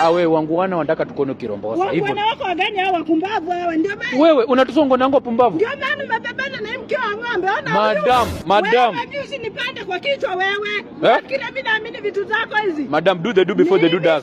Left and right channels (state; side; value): identical; both; correlation 1.00